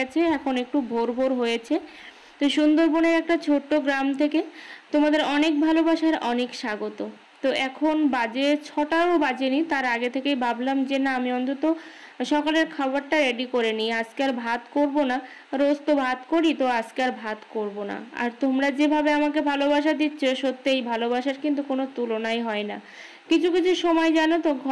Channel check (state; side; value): identical; both; correlation 1.00